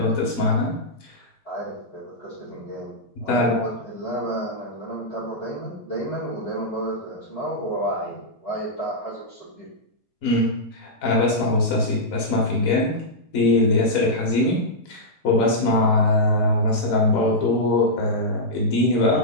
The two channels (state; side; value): late; right; 4.0 ms